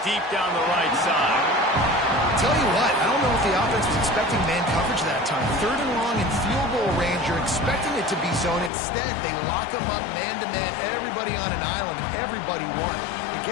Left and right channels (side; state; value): right; drops out; at 8.7 s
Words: deep down the right side. Tell you what, I don't know if the offense was expecting man coverage that time. 3rd and long in field goal range, you're expecting it to be zone. Instead, they lock him up man-to-man, everybody on an island, and everybody won. They